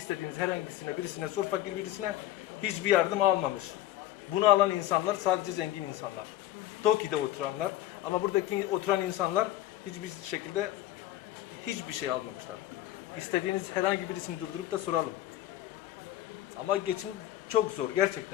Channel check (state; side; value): quieter; right; 14.1 dB